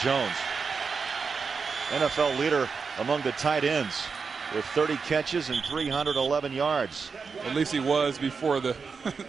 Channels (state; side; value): quieter; left; 5.2 dB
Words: Jones. NFL leader among the tight ends with 30 catches and 311 yards. At least he was before the